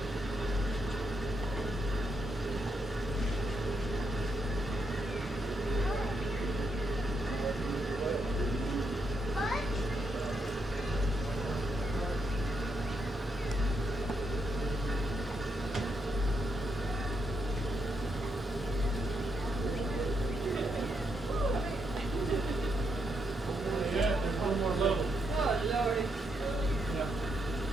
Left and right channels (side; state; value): both; normal; correlation 0.80